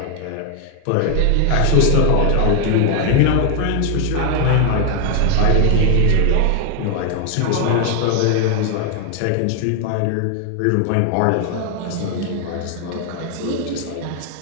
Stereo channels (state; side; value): different; both; correlation 0.00